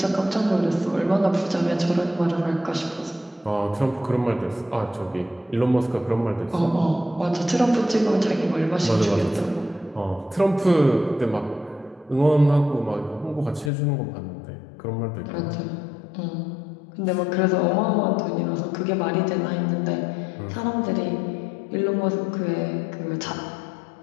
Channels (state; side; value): drops out; right; at 13.7 s